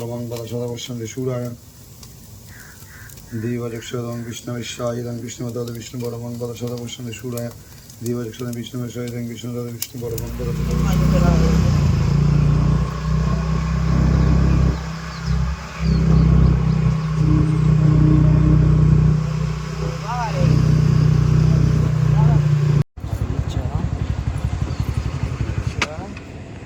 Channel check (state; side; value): identical; both; correlation 1.00